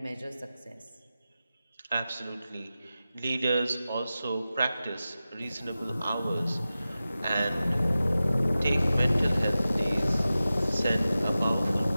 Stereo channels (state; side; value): inverted; both; correlation -0.94